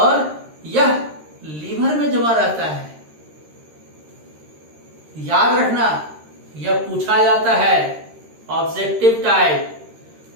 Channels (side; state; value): left; late; 13 ms